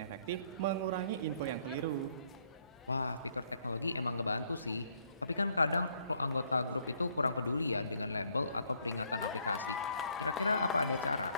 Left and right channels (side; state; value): both; inverted; correlation -0.68